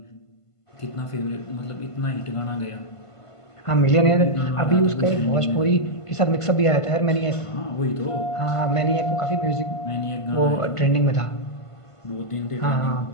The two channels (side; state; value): right; late; 1.5 ms